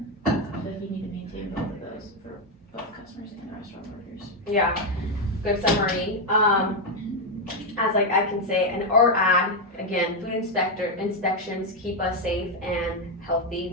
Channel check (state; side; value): normal; both; correlation 0.04